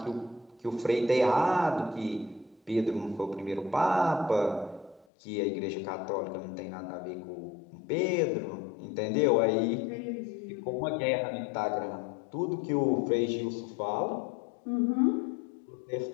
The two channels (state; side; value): drops out; right; at 5.1 s